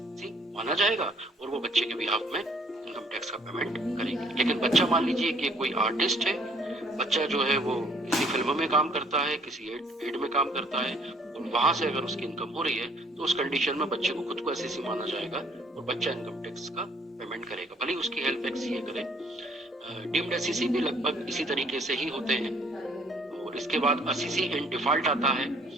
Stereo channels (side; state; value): both; normal; correlation 0.62